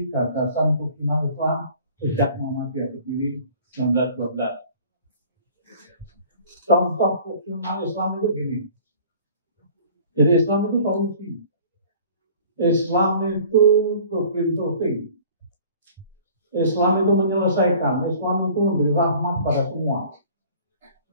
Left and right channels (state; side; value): inverted; both; correlation -0.49